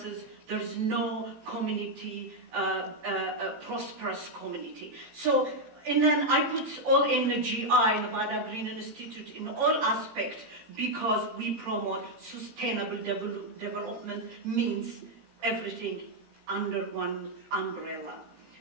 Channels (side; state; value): left; late; 18 ms